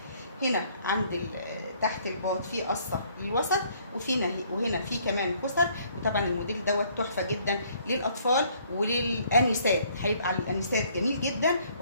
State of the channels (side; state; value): both; inverted; correlation -0.63